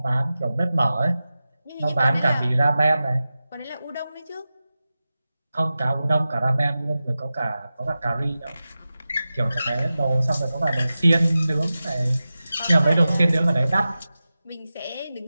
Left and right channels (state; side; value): inverted; both; correlation -0.94